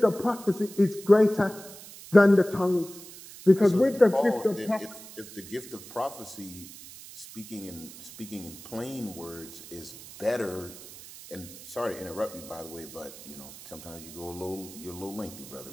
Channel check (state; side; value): noise; right; hiss, 16 dB below the sound